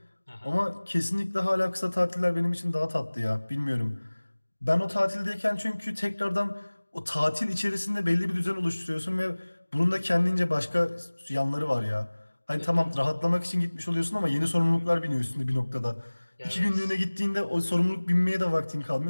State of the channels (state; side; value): inverted; both; correlation -1.00